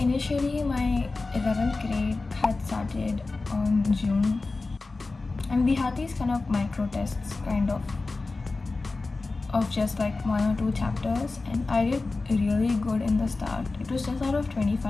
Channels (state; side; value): quieter; right; 3.6 dB